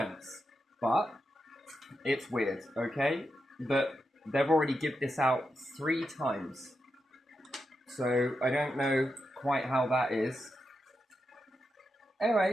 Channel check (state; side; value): normal; both; correlation 0.87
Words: But it's weird, okay? But they've already given this out 3 times. So I don't know quite how that is.